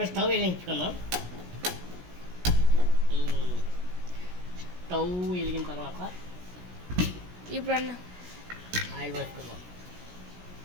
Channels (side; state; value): left; late; 17 ms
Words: స్టవ్ వెలిగించుకుందాం. స్టవ్ వెలిగిన తర్వాత ఇప్పుడు ఆయిల్ వేసుకుందాం.